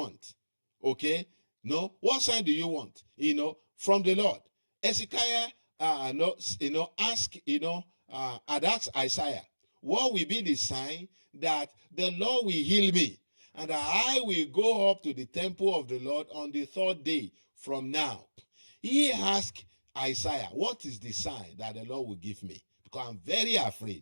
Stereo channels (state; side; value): inverted; both; correlation -1.00